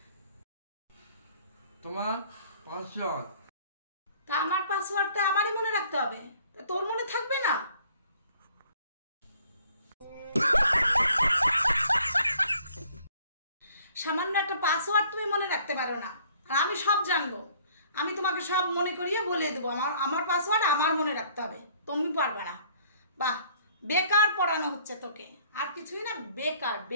তোমার পাসওয়ার্ড। তা আমার পাসওয়ার্ডটা আমারই মনে রাখতে হবে, তা তোর মনে থাকবে না? সামান্য একটা পাসওয়ার্ড তুমি মনে রাখতে পারো না, আর আমি সব জানবো। আমি তোমাকে সব মনে করিয়ে বলে দেবো আমার পাসওয়ার্ড আমার মনে রাখতে হবে, তুমি পারবে না। বাহ, বেকার পড়ানো হচ্ছে তোকে, আর কিছুই না, বেকার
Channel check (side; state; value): both; inverted; correlation -0.58